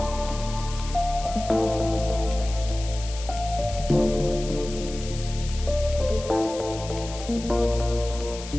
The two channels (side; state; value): left; noise; hiss, 13 dB below the sound